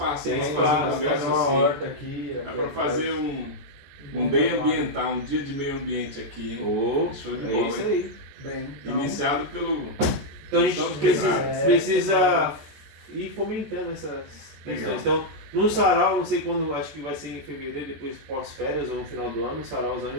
Tem Dá pra espaço, fazer um negócio fazer uma assim. horta aqui. Dá para fazer um day ambiental, um dia de meio ambiente aqui, hein? Show de é bola, isso hein? aí. Bem, então, Iniciado pelo... Então a gente Então, precisa ir fomentando essas questões. Legal. Então, no sarau, não sei quando, acho que vai ser em fevereiro, depois pós-férias ou no final do ano, no sarauzão a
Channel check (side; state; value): left; late; 14 ms